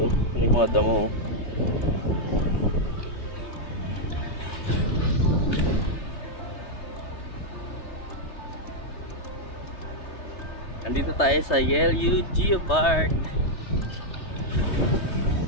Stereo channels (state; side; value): late; right; 3.2 ms